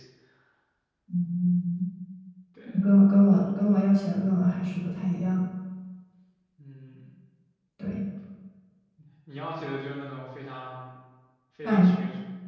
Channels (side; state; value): both; identical; correlation 1.00